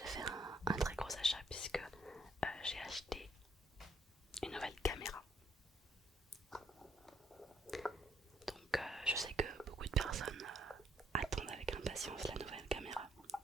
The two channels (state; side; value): normal; both; correlation 0.69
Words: fait un très gros achat puisque j'ai acheté une nouvelle caméra. Donc je sais que beaucoup de personnes attendent avec impatience la nouvelle caméra.